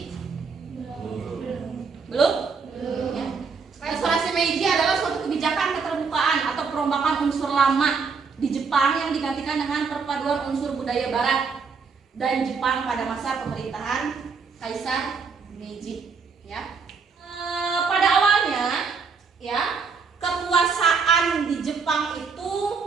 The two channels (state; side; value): quieter; left; 5.2 dB